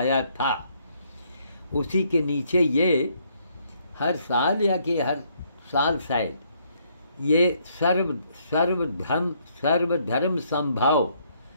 था। उसी के नीचे ये हर साल या कि हर साल शायद ये सर्वधर्म संभाव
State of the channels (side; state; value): both; inverted; correlation -0.70